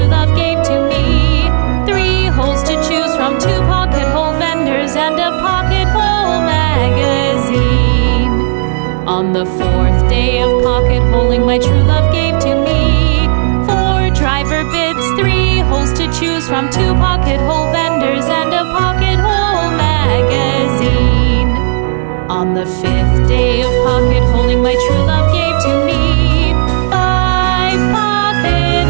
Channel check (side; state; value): left; silent; digital silence